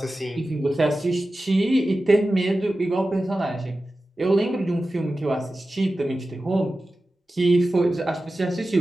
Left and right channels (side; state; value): both; normal; correlation 0.94